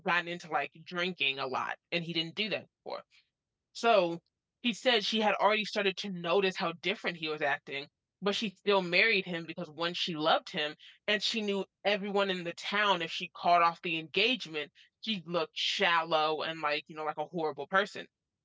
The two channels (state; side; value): identical; both; correlation 1.00